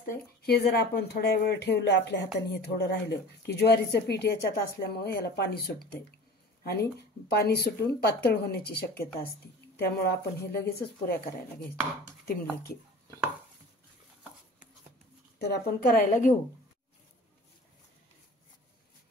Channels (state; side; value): normal; both; correlation 0.41